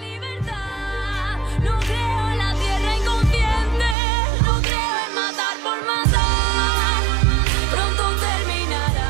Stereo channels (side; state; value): left; drops out; at 4.0 s